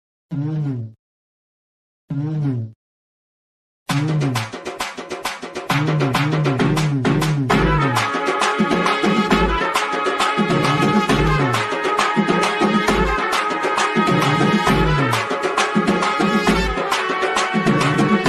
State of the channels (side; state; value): both; identical; correlation 1.00